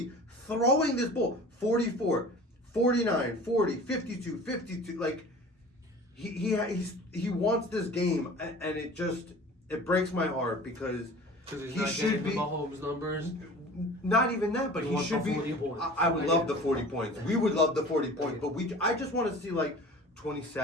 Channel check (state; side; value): normal; both; correlation 0.41